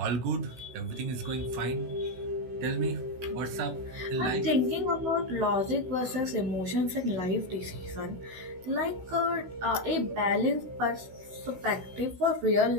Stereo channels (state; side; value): late; left; 16 ms